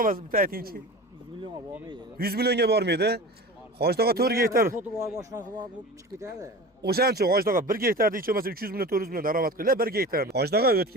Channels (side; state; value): both; normal; correlation 0.34